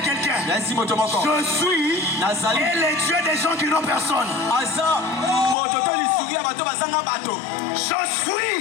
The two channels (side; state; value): right; drops out; at 5.6 s